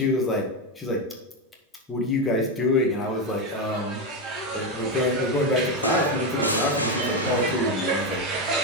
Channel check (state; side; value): normal; both; correlation 0.10